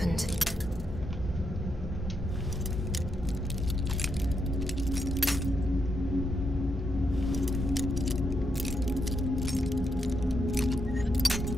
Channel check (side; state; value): both; normal; correlation 0.82